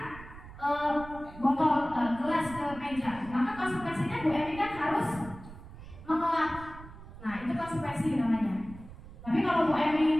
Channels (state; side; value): noise; right; rumble, 16 dB below the sound